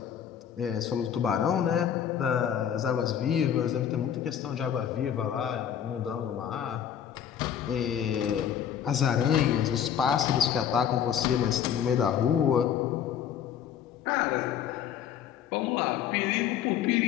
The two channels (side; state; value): right; quieter; 9.2 dB